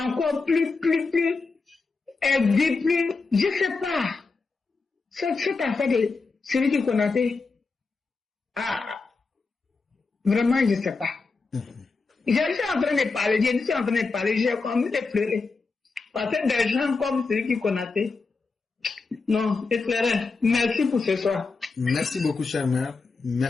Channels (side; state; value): right; quieter; 4.2 dB